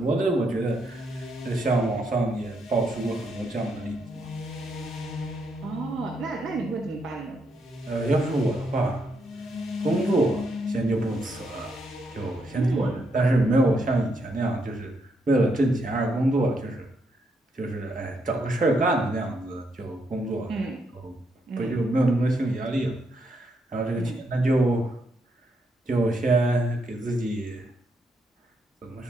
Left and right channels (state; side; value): normal; both; correlation 0.78